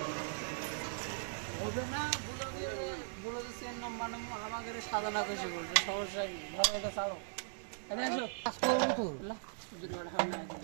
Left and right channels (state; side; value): silent; left; digital silence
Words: না বলে সেন নাম্বার আমাদের সাধনা কইছে বলতে সমস্যা কি ধরে এটা ছাড়ো এটা আসো কাজ করব তো না জুড়ে হয় না